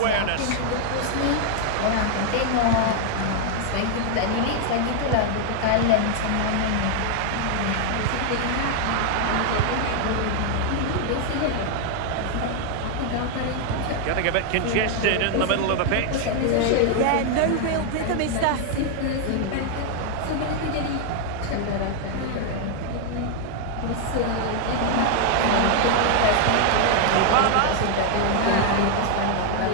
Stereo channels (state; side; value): different; both; correlation 0.00